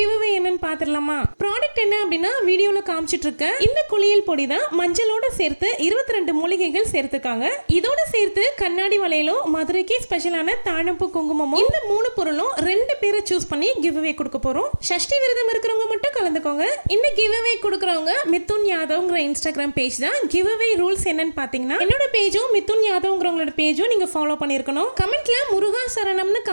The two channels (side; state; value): both; inverted; correlation -1.00